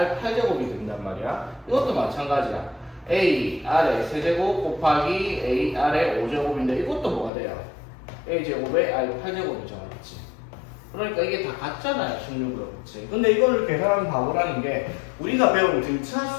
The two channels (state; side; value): drops out; right; at 7.3 s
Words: 8제곱이 된단 말이야. 이것도 마찬가지야. A R의 세제곱 곱하기 A R의 5제곱인데 이것도 뭐가 돼요? A 제곱에 R 8제곱이죠, 맞지? 그러니까 이게 다 같잖아요, 16으로, 그치? 근데 이거를 계산하면 바보라는 게 우리가 배운 등차